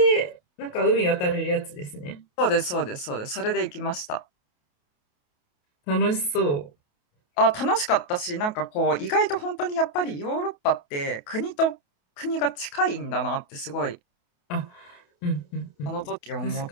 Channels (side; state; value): right; late; 28 ms